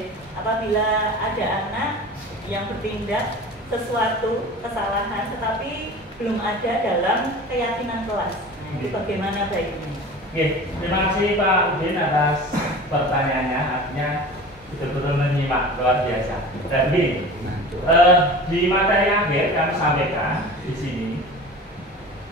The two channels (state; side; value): normal; both; correlation 0.37